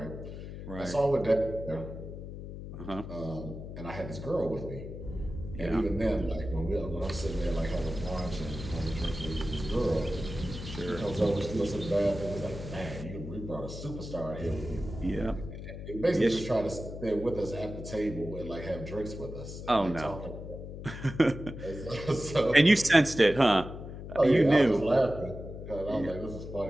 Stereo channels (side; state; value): left; noise; hum, 10 dB below the sound